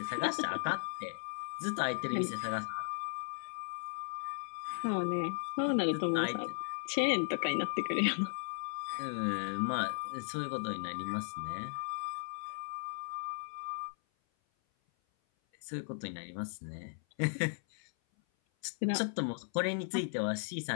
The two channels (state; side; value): silent; right; 53 dB below the other